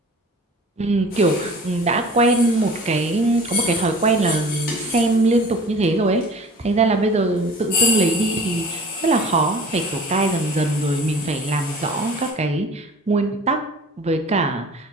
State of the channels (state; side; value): normal; both; correlation 0.44